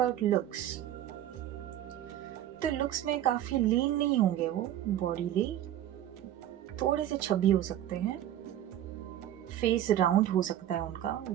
looks, तो लुक्स में काफ़ी लीन नहीं होंगे वो बॉडीली, थोड़े से छबी हो सकते हैं, फेस राउंड हो सकता है उनका,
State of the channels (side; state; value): left; quieter; 12.0 dB